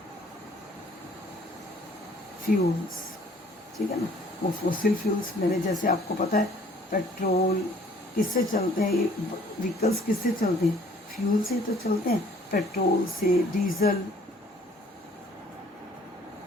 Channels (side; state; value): both; normal; correlation 0.57